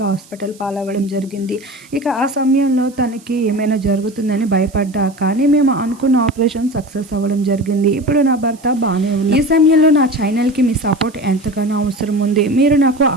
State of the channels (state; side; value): noise; right; hiss, 25 dB below the sound